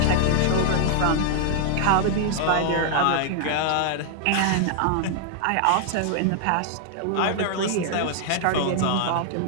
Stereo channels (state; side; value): different; both; correlation 0.00